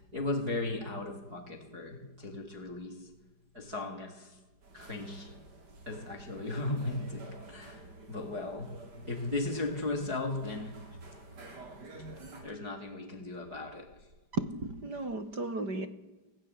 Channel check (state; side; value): late; left; 4.8 ms